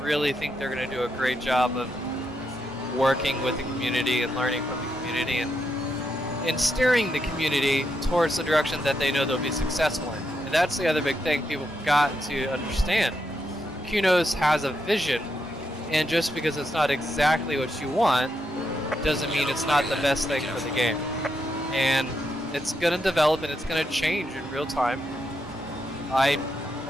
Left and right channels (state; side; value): normal; both; correlation 0.82